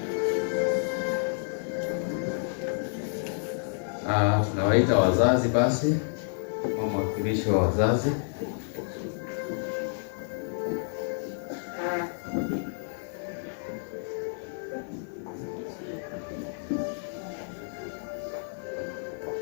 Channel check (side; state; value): right; silent; digital silence